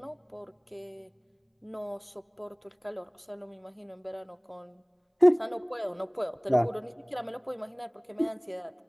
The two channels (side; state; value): both; identical; correlation 1.00